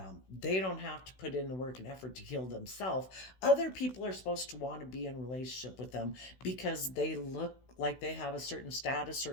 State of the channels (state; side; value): late; right; 16 ms